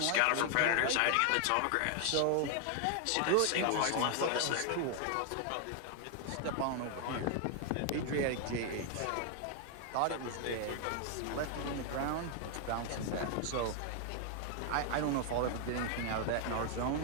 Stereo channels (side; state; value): both; different; correlation 0.00